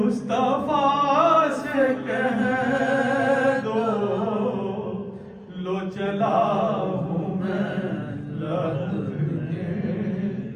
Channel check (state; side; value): identical; both; correlation 1.00